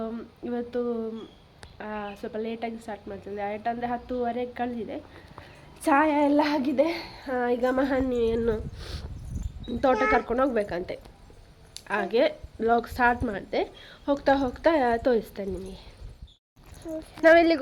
ಇವತ್ತು ಸ್ವಲ್ಪ ಲೇಟಾಗಿ ಸ್ಟಾರ್ಟ್ ಮಾಡ್ತಿದ್ದೆ. ಅಂದರೆ 10:30 ಕಳೆದಿದೆ. ಚಾಯ ಎಲ್ಲ ಆಗಿದೆ. ಈಗ ಮಹನಿಯನ್ನು ತೋಟ ಕರ್ಕೊಂಡು ಹೋಗ್ಬೇಕಂತೆ, ಹಾಗೆ ವ್ಲಾಗ್ ಸ್ಟಾರ್ಟ್ ಮಾಡಿದೆ. ಹೋಗ್ತಾ ಹೋಗ್ತಾ ತೋರಿಸ್ತೇನೆ ನಿಮಗೆ.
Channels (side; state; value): both; identical; correlation 1.00